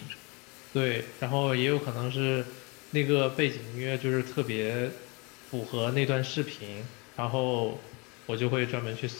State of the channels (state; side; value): quieter; right; 29.2 dB